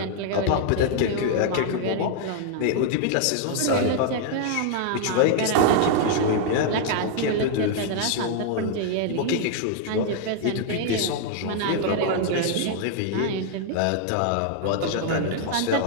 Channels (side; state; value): both; different; correlation 0.00